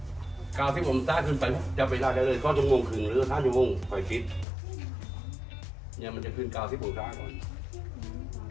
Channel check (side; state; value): right; drops out; at 4.5 s